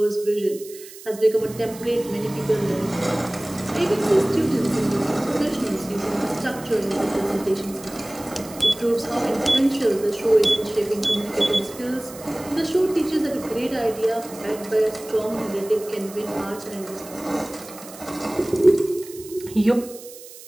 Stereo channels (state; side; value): noise; right; hiss, 17 dB below the sound